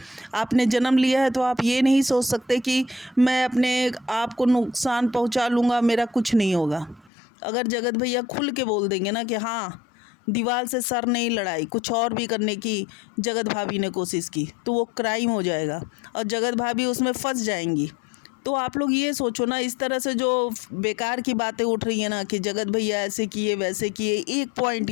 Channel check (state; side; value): drops out; right; at 7.1 s